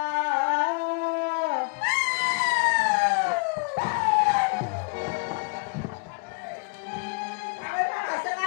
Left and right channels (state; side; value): quieter; right; 33.6 dB